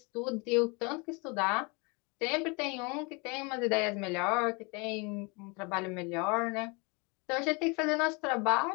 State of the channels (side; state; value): right; quieter; 30.0 dB